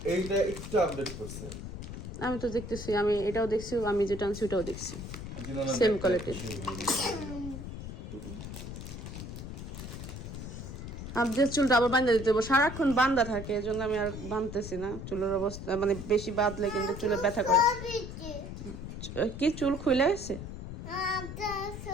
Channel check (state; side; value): noise; left; rumble, 9 dB below the sound